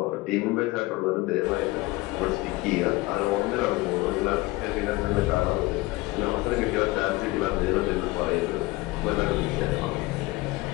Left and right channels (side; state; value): right; quieter; 20.8 dB